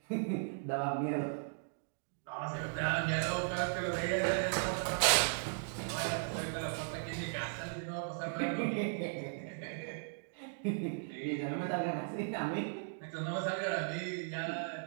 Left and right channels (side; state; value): left; silent; digital silence